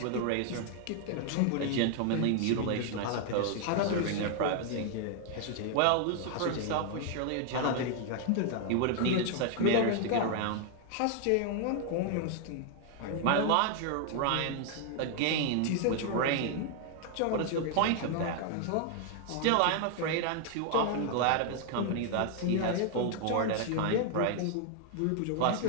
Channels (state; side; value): different; both; correlation 0.00